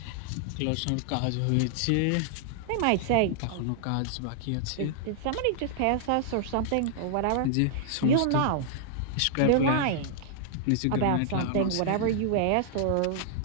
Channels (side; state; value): both; different; correlation -0.01